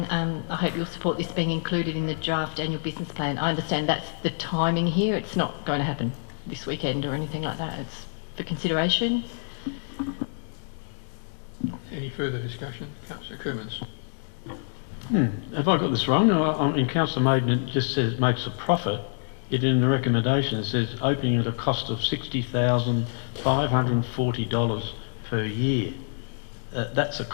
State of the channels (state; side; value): silent; right; digital silence